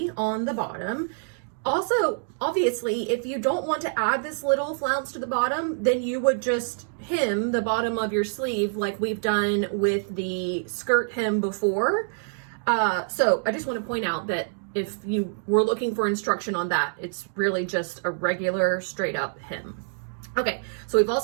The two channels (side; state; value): left; silent; digital silence